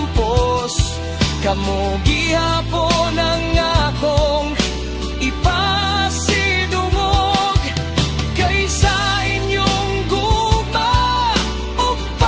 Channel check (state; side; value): identical; both; correlation 1.00